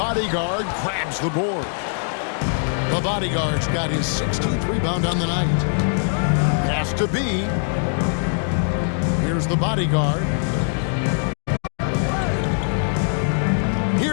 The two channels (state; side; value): silent; right; digital silence